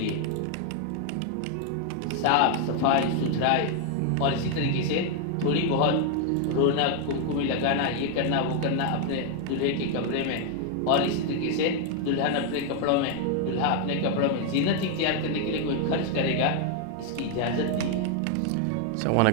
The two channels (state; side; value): different; both; correlation 0.00